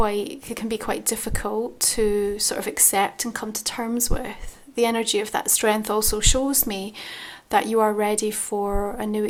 be quite difficult to sort of accept and come to terms with, the energy of that strength also shows me that you are ready for a new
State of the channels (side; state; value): both; identical; correlation 1.00